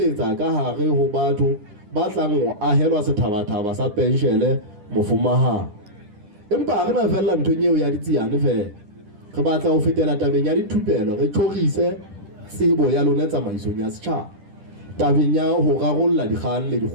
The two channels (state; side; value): late; left; 10 ms